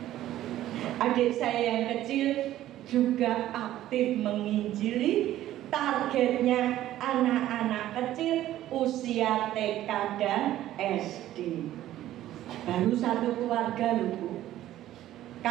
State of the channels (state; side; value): quieter; left; 13.6 dB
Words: Adik saya yang kecil juga aktif menginjili. Targetnya anak-anak kecil usia TK dan SD. Baru satu keluarga loh Bu.